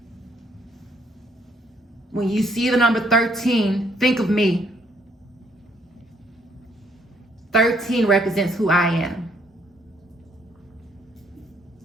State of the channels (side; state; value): both; normal; correlation 0.68